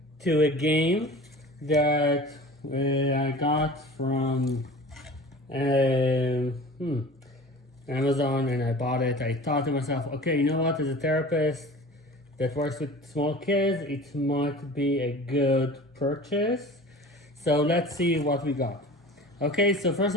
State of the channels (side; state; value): both; normal; correlation 0.40